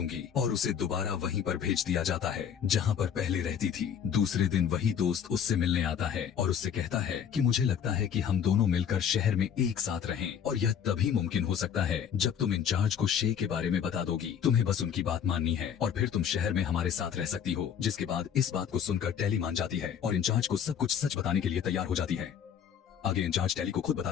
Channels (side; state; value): right; quieter; 8.3 dB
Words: और उसे दोबारा वहीं पर भेज दिया जाता है जहाँ पर पहले रहती थी। दूसरे दिन वही दोस्त उससे मिलने आता है और उससे कहता है कि मुझे लगता है कि हम दोनों मिलकर शहर में एक साथ रहें, और यह तभी मुमकिन हो सकता है जब तुम इंचार्ज को शे के बारे में बता दोगी। तुम्हें बस उनकी बात माननी है और फिर तुम शहर में हमारे साथ रह सकती हो। जिसके बाद इस बात को सुनकर टैली मान जाती है और इंचार्ज को सब कुछ सच बताने के लिए तैयार हो जाती है। आगे इंचार्ज टैली को खुद